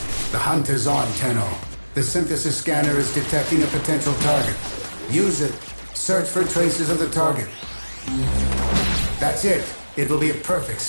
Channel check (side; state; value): both; inverted; correlation -1.00